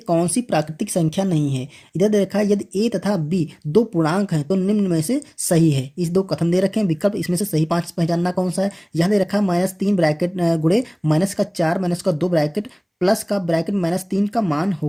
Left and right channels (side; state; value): both; identical; correlation 1.00